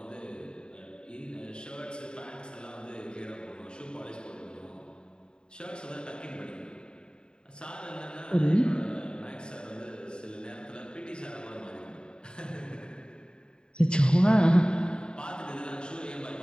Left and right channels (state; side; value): late; right; 0.049 ms